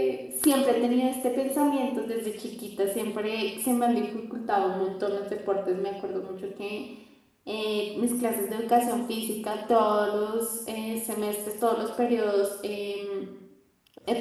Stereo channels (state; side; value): identical; both; correlation 1.00